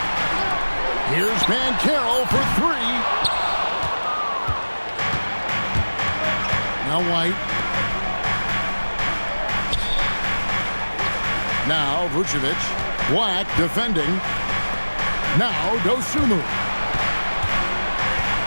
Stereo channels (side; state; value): both; inverted; correlation -1.00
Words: Here's Banchero for 3. Now White. Now Vucevic. Black defending. Now Dosunmu.